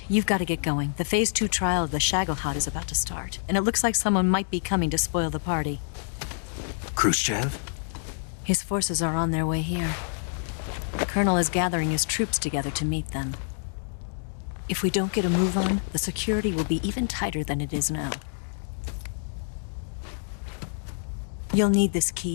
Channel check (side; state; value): right; silent; digital silence